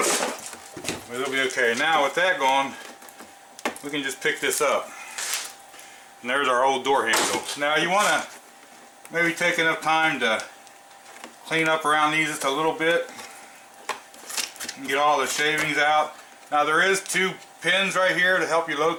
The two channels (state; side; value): identical; both; correlation 1.00